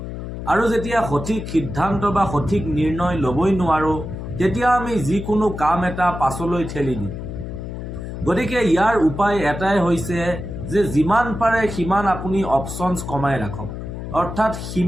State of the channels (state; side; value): noise; left; hum, 8 dB below the sound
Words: আৰু যেতিয়া সঠিক সিদ্ধান্ত বা সঠিক নিৰ্ণয় ল'বই নোৱাৰোঁ, তেতিয়া আমি যিকোনো কাম এটা পাছলৈ ঠেলি দিওঁ। গতিকে ইয়াৰ উপায় এটাই হৈছে যে যিমান পাৰে সিমান আপুনি অপশ্যনছ কমাই ৰাখক, অৰ্থাৎ